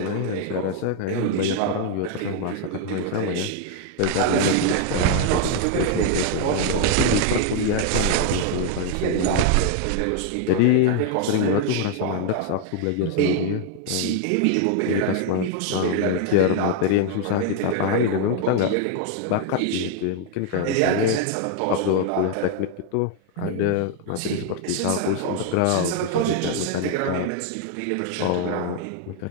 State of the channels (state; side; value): different; both; correlation 0.00